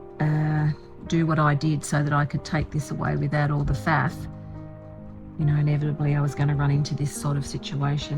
do what I did so that I could take this away without all the faff, you know, inevitably I was going to run into this sort of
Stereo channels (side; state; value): both; identical; correlation 1.00